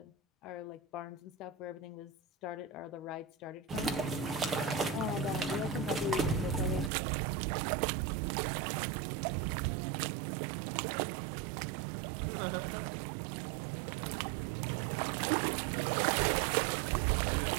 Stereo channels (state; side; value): drops out; left; at 6.9 s